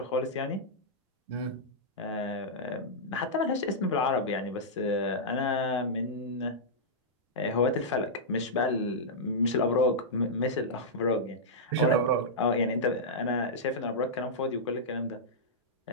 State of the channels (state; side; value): normal; both; correlation -0.11